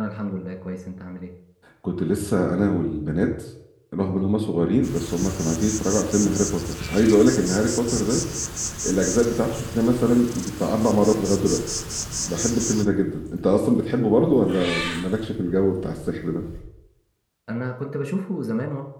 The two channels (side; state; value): both; identical; correlation 1.00